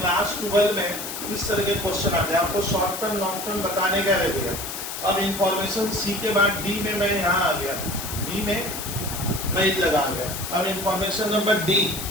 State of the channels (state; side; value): noise; left; hiss, 7 dB below the sound